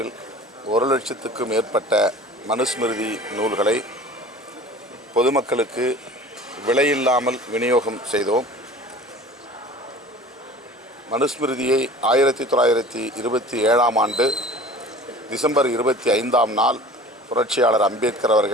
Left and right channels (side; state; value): both; normal; correlation 0.43